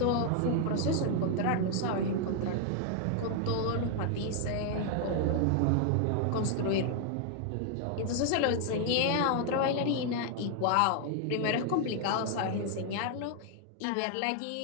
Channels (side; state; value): both; different; correlation 0.00